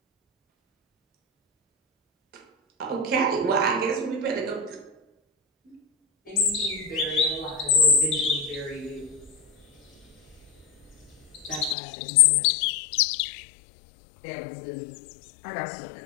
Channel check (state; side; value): drops out; right; at 11.8 s